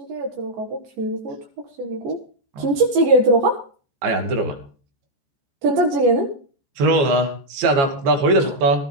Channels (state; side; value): late; left; 14 ms